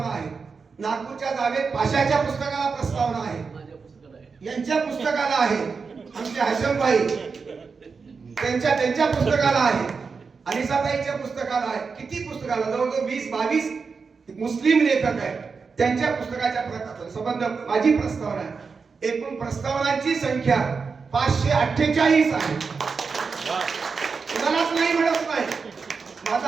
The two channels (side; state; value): left; quieter; 5.1 dB